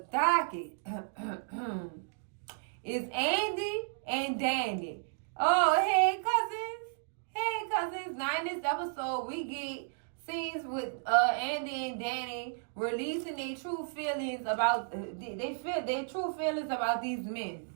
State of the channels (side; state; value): left; silent; digital silence